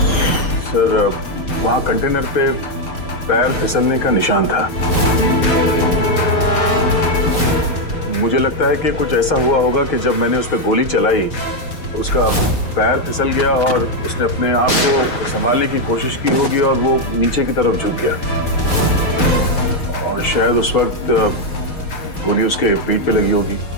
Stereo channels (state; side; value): late; right; 6.3 ms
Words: सर वहां कंटेनर पे पैर फिसलने का निशान था। मुझे लगता है कि कुछ ऐसा हुआ होगा कि जब मैंने उस पर गोली चलाई उसका पैर फिसल गया और उसने अपने आप को संभालने की कोशिश की होगी और वो नीचे की तरफ झुक गया और शायद उस वक्त गोली उसके पीठ पे लगी होगी,